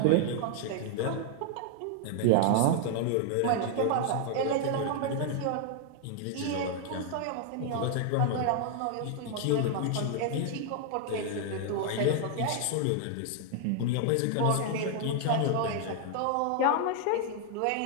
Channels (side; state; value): both; different; correlation 0.00